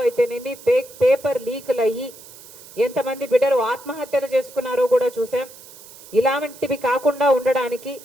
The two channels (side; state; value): right; noise; hiss, 19 dB below the sound